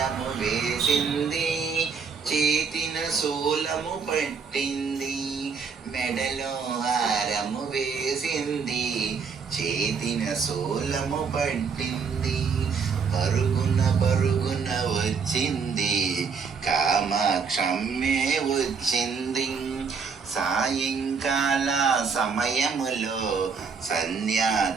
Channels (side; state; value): left; quieter; 5.6 dB